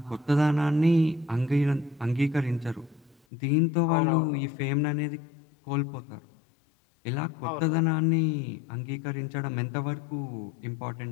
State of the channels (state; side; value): drops out; right; at 3.2 s